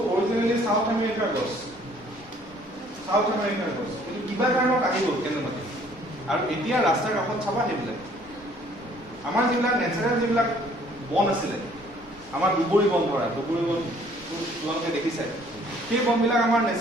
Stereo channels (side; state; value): both; normal; correlation 0.59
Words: অৰিজিনেলি সাউথ আমেৰিকাৰ গছ কিন্তু কিবা কাৰণত আহি গ'ল কেনেবাকে আৰু এতিয়া ৰাস্তাৰ কাষত চাবা সেইবিলাক আমাৰ যিবিলাক নেচাৰেল যিবিলাক বন আছিলে আমাৰ দুবৰি বন ধৰা দুবৰি বন তোমালোকে দেখিছে সেই বনবিলাক আমাৰ